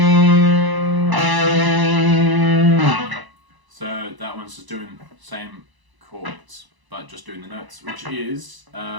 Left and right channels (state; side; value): late; left; 1.0 ms